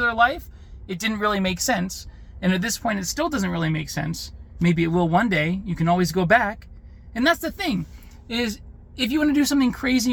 life, it didn't really make sense. And at this point, it still doesn't really make sense. Maybe it will one day. You can always go back. And that's the thing, is if you want to do something crazy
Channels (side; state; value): both; identical; correlation 1.00